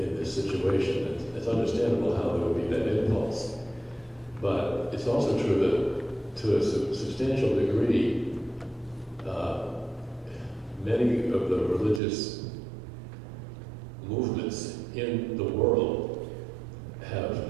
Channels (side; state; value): left; drops out; at 12.0 s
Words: this situation. It's understandable how there would be that impulse. But it's also true that to a substantial degree, many of the religious movements in the world have